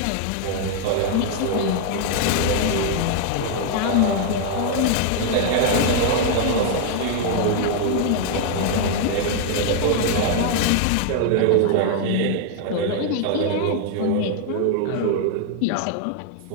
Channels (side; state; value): both; different; correlation 0.00